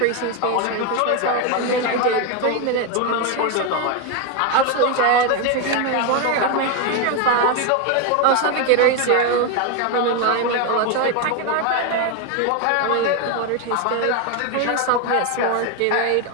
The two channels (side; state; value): both; different; correlation 0.02